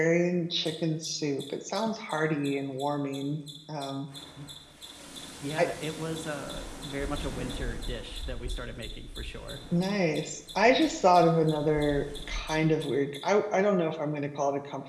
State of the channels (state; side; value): identical; both; correlation 1.00